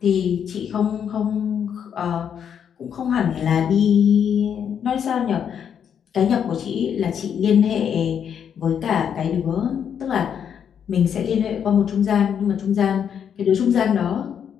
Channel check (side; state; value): right; quieter; 8.2 dB